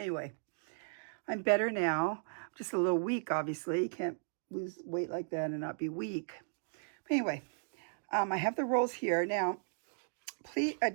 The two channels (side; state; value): left; silent; digital silence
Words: I'm better now. I'm just a little weak, obviously. You can't lose weight like that and not be weak. But anyway, I have the rolls here. Now, please